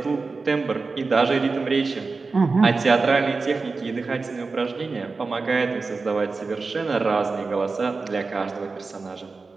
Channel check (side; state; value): left; quieter; 4.1 dB